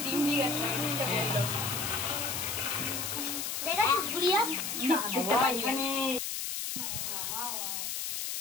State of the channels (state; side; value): noise; left; hiss, 3 dB below the sound